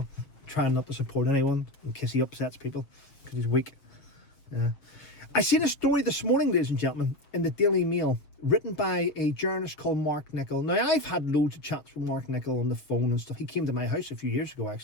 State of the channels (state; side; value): late; right; 6.7 ms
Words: trying not to support anyone in case he upsets people because he's weak. Yeah. I seen a story this morning, ladies and gentlemen, in the Daily Mail, written by a journalist called Markle. Now, I've had loads of chats with Markle on the phone and stuff. He came to my house a few years ago,